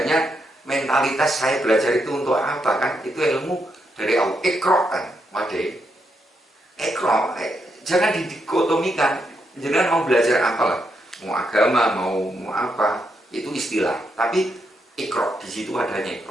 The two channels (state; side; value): normal; both; correlation 0.80